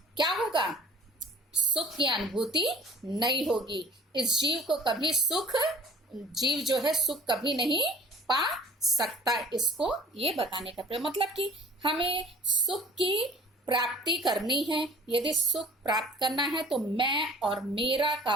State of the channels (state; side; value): normal; both; correlation 0.48